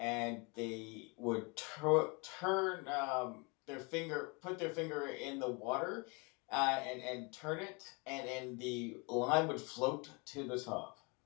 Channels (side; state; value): right; quieter; 30.5 dB